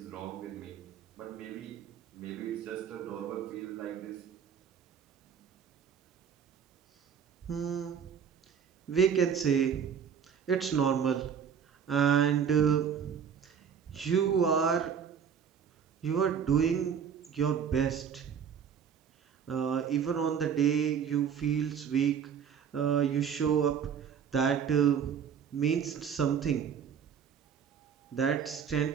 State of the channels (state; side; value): quieter; left; 7.6 dB